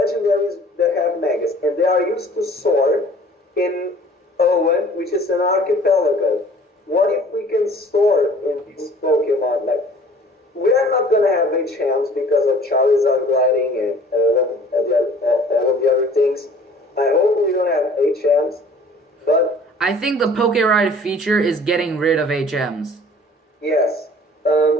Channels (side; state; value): both; normal; correlation 0.50